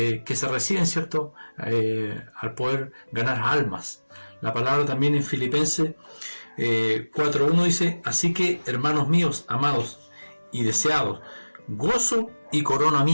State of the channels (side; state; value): both; inverted; correlation -1.00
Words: se reciben, ¿cierto?, al poder ganar almas. La palabra también en Filipenses 4:1 dice: así que, hermanos míos, amados y deseados, gozo y corona